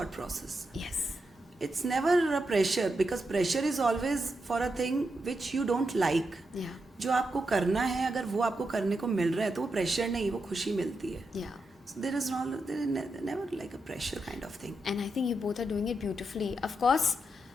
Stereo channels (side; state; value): both; normal; correlation 0.85